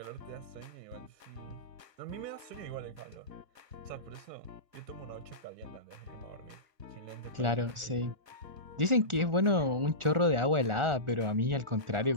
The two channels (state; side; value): late; left; 1.4 ms